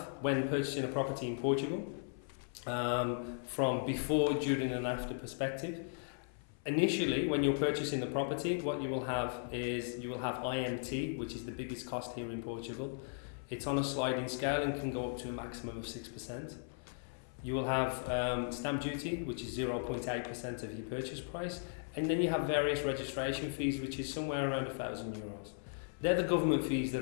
when purchasing a property in Portugal, from before, during and after perspective. Initially, when you're purchasing the property, what you will have is you will have IMT, which is the biggest cost here in Portugal. It's on a sliding scale and can go up to a maximum of 6%. You will have stamp duty, which is 0.8% of your purchase price, and then you have various registration fees, which is somewhere around €1,000. They're the government fees that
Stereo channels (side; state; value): right; silent; 53 dB below the other